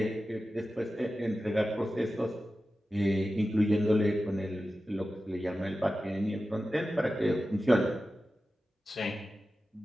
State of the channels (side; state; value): both; normal; correlation 0.94